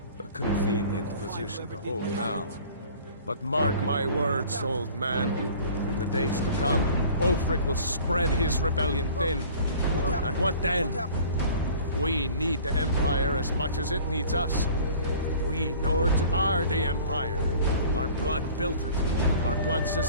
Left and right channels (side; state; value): both; inverted; correlation -0.47